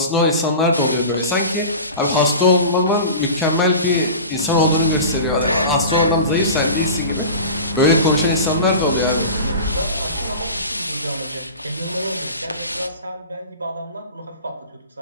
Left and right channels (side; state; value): both; inverted; correlation -0.34